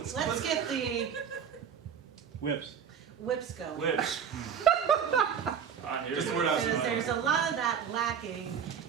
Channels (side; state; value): left; quieter; 7.6 dB